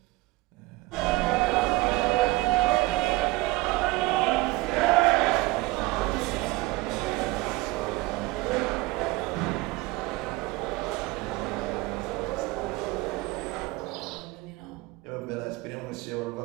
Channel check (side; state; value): left; quieter; 21.2 dB